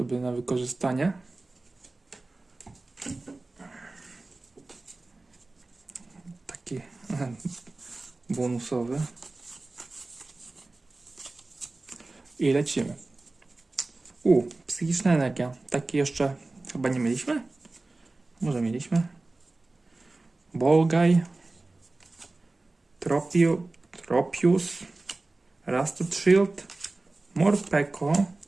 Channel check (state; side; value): quieter; left; 3.2 dB